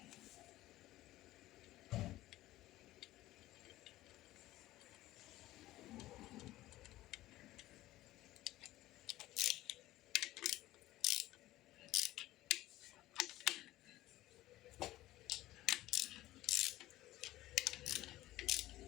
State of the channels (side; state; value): right; quieter; 16.2 dB